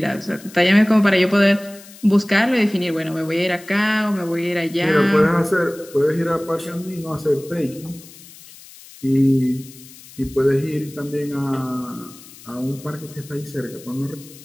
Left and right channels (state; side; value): noise; left; hiss, 20 dB below the sound